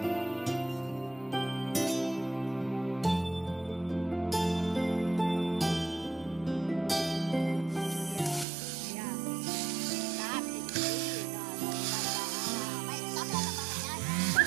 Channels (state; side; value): drops out; left; at 8.5 s